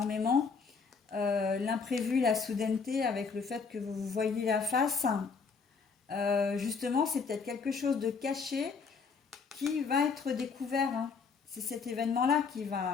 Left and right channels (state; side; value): quieter; right; 5.3 dB